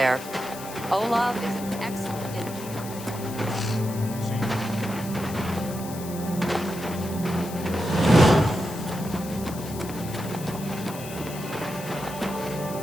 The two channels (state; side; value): noise; left; hiss, 13 dB below the sound